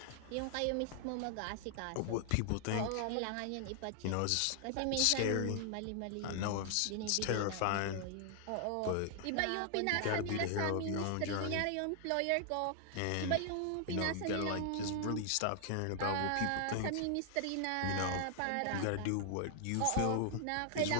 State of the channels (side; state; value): both; different; correlation 0.00